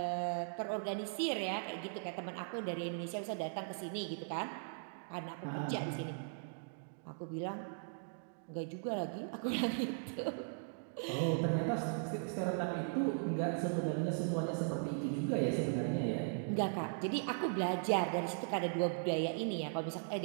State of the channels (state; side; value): silent; left; digital silence